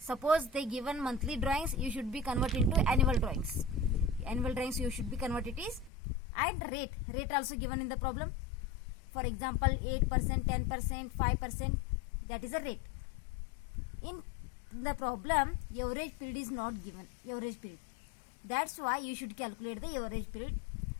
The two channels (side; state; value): right; drops out; at 5.9 s